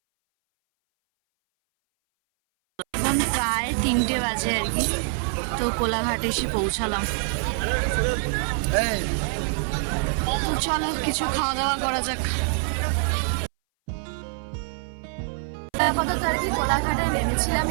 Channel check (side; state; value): left; silent; 59 dB below the other